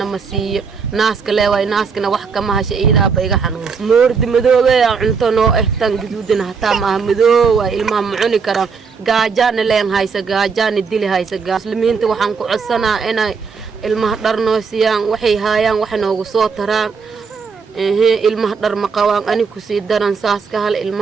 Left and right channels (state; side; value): quieter; left; 5.5 dB